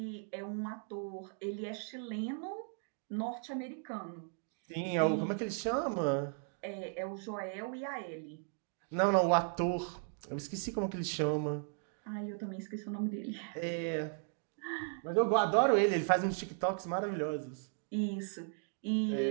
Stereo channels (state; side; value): silent; left; 53 dB below the other